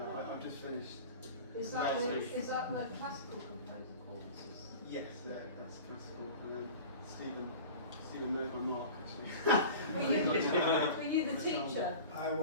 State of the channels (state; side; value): inverted; both; correlation -0.37